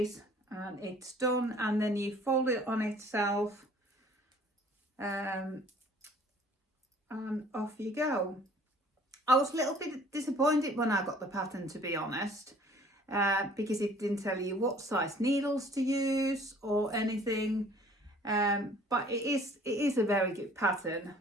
and it's done, and then you fold it on itself, and off you go. I was a little bit disappointed when I got the pattern, to be honest, because it didn't tell you what size needles to use or anything, but it is a very good pattern.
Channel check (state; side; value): normal; both; correlation 0.54